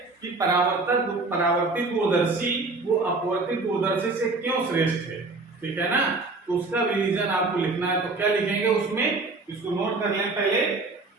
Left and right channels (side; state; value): left; quieter; 3.5 dB